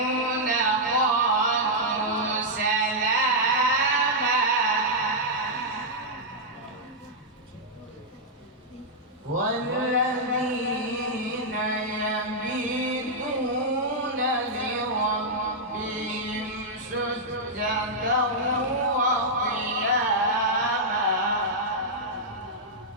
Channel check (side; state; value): both; normal; correlation -0.06